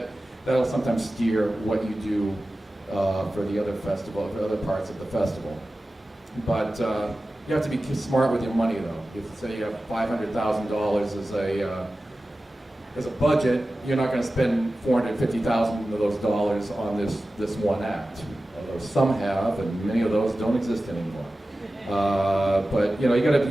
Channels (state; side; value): normal; both; correlation 0.95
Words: that'll sometimes steer what you do for the other festival, for other parts of the festival. But you have to be smart with your money, though. If say you have $500,000 as a budget, you're not going to spend $450,000 of those dollars on this one act. Although some have, and many of those don't exist anymore. But you got to